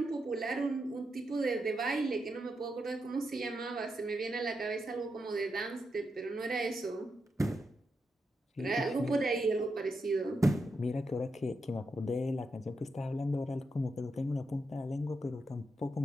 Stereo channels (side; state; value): both; normal; correlation 0.85